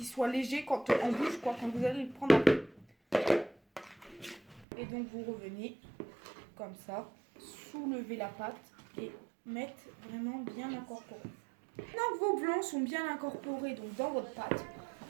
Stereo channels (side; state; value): left; drops out; at 4.7 s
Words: soit léger quand en bouche quand vous allez le prendre après. Et donc vous revenez comme ça, soulevez la pâte et mettre vraiment bien incorporé. Maintenant que vos blancs sont bien incorporés donc dans votre pâte,